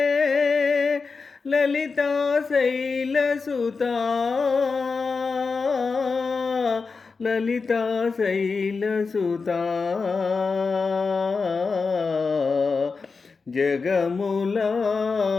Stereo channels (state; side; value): quieter; right; 4.6 dB